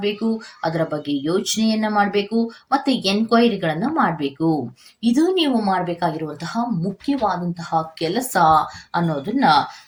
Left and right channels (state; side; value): identical; both; correlation 1.00